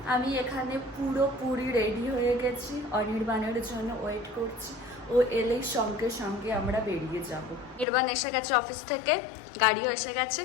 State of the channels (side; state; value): right; drops out; at 7.9 s